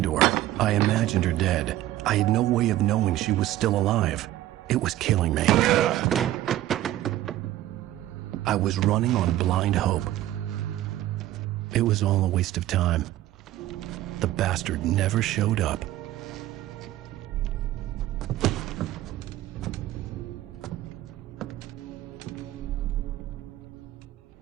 to her. I imagined her dead. I had no way of knowing she was still alive. It was killing me. I was running on blind hope. It was all a waste of time. The bastard never showed up.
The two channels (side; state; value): left; quieter; 14.5 dB